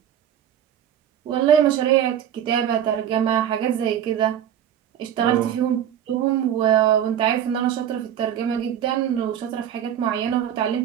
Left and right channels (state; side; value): quieter; left; 9.9 dB